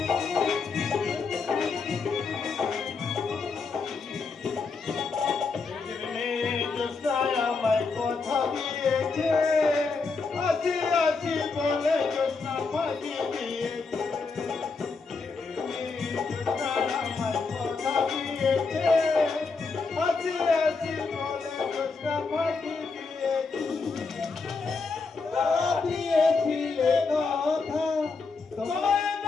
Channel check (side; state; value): right; quieter; 4.5 dB